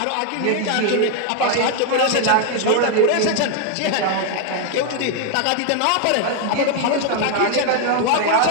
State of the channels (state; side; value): different; both; correlation 0.00